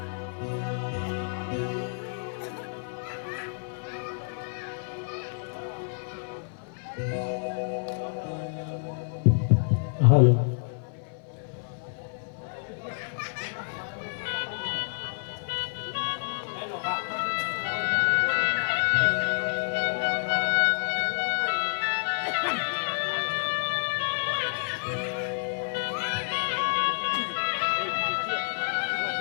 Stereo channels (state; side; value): silent; right; 56 dB below the other